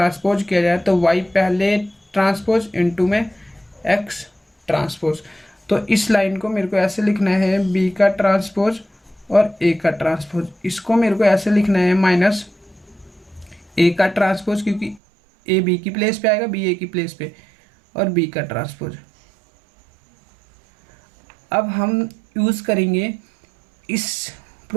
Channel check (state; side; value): drops out; left; at 15.0 s